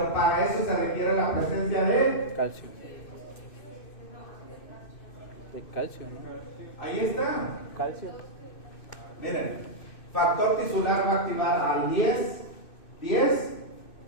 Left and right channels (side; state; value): right; late; 2.6 ms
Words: para eso se requiere la presencia de Calcio. De calcio, ¿no? ahí está. Calcio. Miren, factor tisular va a activar al 10